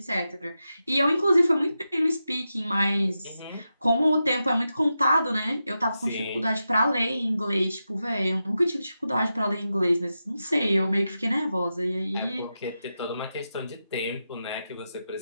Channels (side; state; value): both; inverted; correlation -0.89